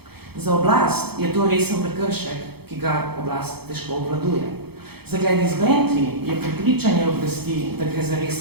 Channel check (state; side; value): late; left; 0.96 ms